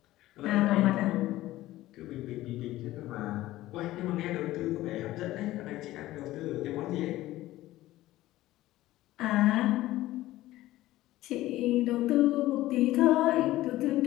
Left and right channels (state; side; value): quieter; right; 16.1 dB